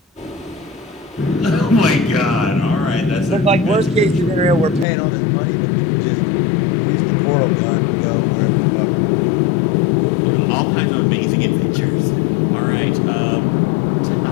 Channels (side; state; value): right; drops out; at 4.9 s